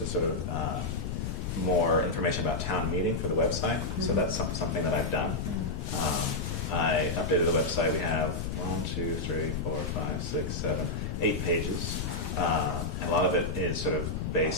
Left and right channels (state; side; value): noise; left; rumble, 3 dB below the sound